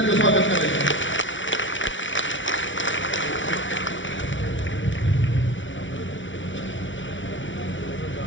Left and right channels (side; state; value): right; late; 0.56 ms